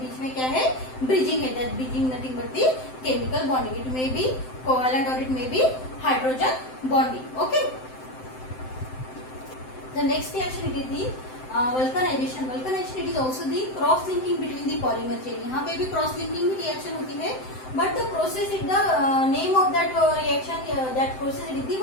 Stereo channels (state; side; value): late; right; 7.8 ms